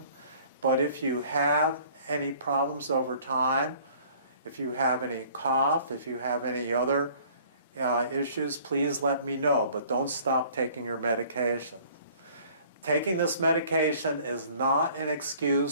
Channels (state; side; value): inverted; both; correlation -0.54